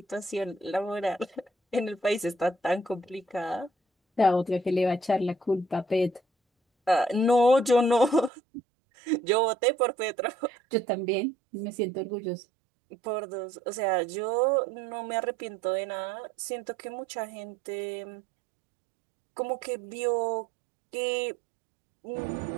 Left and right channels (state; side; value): drops out; left; at 8.3 s